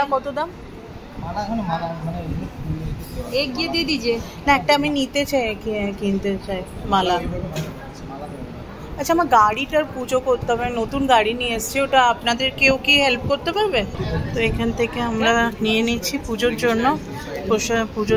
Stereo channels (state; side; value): identical; both; correlation 1.00